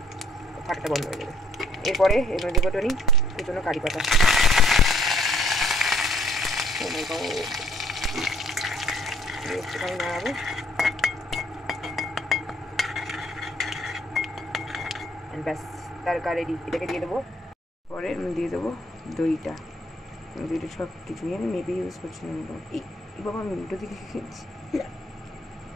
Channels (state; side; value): normal; both; correlation 0.65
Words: ফাটাটা বন্ধ হয়ে যাবে। এরপরে এর মধ্যে দেবো টনি কুচনো কারি পাতা, একটুখানি নাড়াবো, ব্যাস তারকা রেডি। এটাকে দিয়ে দেবো, পরে দিয়ে দেবো দইটা। দইটা সব কিছু আমি মেপে ইউজ করছি না, এই বাবা আমি উল্টো দিকে খেয়েছি।